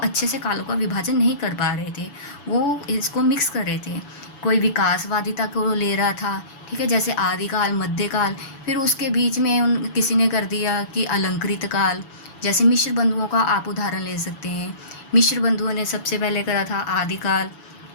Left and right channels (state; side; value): late; right; 7.0 ms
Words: से कालों का विभाजन नहीं कर पा रहे थे, वो इसको मिक्स कर रहे थे। कोई विकासवादिता को ले रहा था, ठीक है, जैसे आदिकाल, मध्यकाल। फिर उसके बीच में किसी ने कर दिया कि अलंकृत काल। जैसे मिश्र बंधुओं का आप उदाहरण ले सकते हैं। मिश्र बंधुओं ने सबसे पहले करा था आदिकाल,